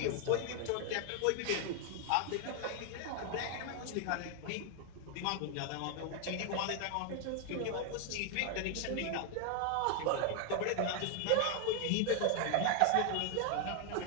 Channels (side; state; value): both; different; correlation 0.00